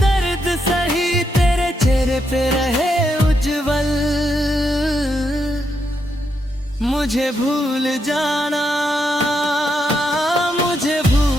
सही, तेरे चेहरे पे रहे उज्जवल। मुझे भूल जाना, मुझे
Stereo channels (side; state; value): both; normal; correlation 0.81